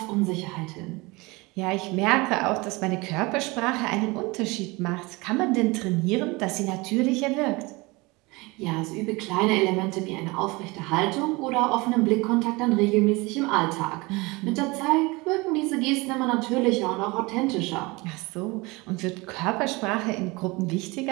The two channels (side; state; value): left; quieter; 24.3 dB